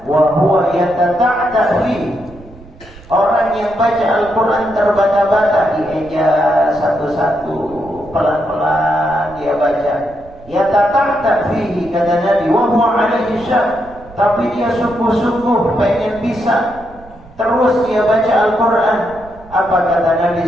wa huwa yatata'ta fi. Orang yang baca Al-Quran terbata-bata, dieja satu-satu, pelan-pelan dia baca. Yatata'ta fihi, kata Nabi, wa huwa alaihi syah. Tapi dia sungguh-sungguh pengen bisa terus dia baca Al-Quran. Apa kata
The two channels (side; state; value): right; noise; rumble, 21 dB below the sound